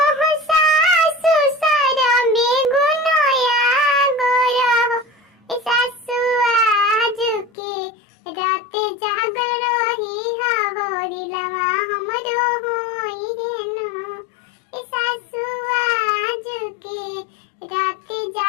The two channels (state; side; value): drops out; right; at 7.5 s